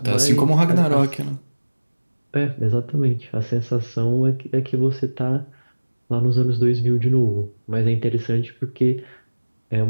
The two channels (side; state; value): both; inverted; correlation -1.00